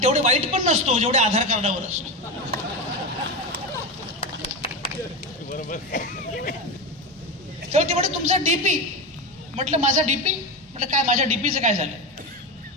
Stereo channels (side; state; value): both; normal; correlation 0.17